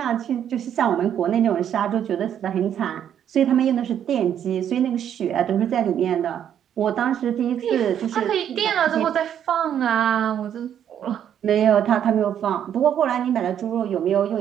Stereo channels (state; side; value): quieter; left; 9.5 dB